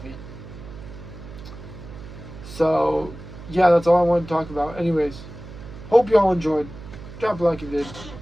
So, yeah, that's all I wanted to talk about. Anyways, hope you all enjoyed. Drop a like if you did.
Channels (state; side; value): noise; right; hum, 14 dB below the sound